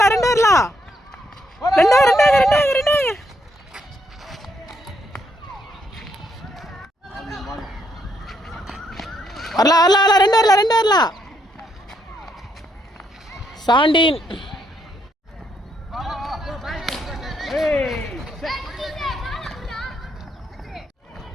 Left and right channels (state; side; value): normal; both; correlation 0.75